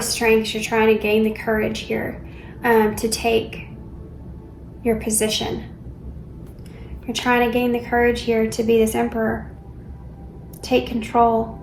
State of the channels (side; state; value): both; identical; correlation 1.00